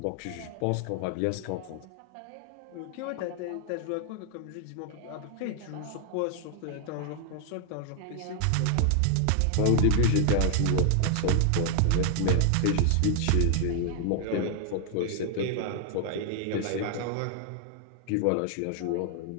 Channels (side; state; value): both; different; correlation 0.00